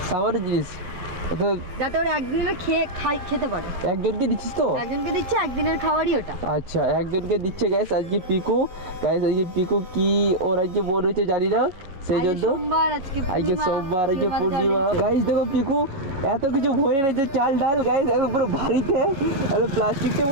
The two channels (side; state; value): left; late; 11 ms